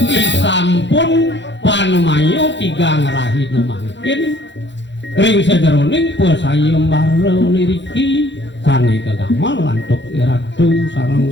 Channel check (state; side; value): late; right; 0.52 ms